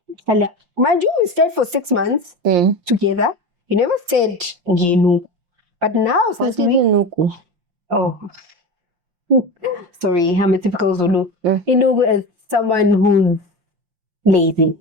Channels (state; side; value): late; left; 5.7 ms